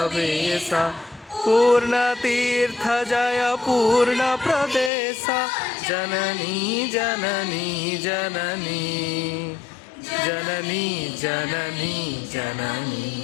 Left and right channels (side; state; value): right; drops out; at 4.9 s